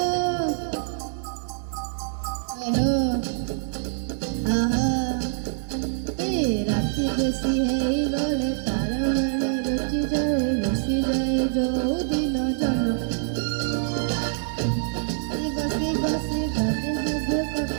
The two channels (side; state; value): left; silent; digital silence